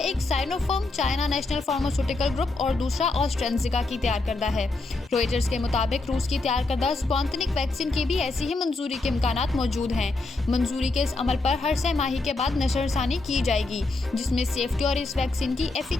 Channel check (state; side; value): quieter; right; 3.3 dB